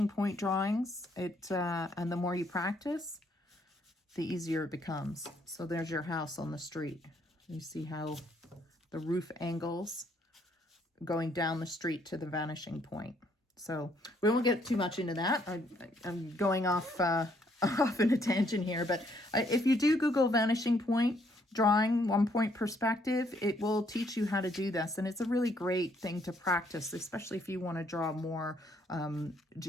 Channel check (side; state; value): both; normal; correlation 0.69